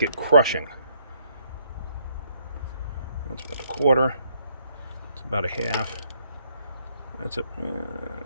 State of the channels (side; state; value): both; inverted; correlation -0.70